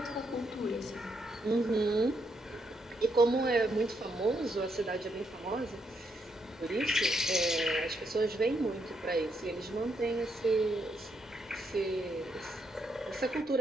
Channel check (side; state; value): both; normal; correlation 0.78